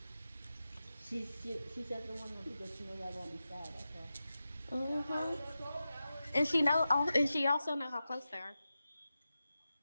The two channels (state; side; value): inverted; both; correlation -0.92